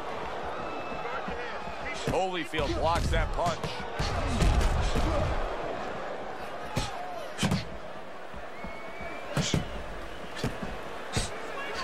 Holyfield blocks that punch.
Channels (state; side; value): identical; both; correlation 1.00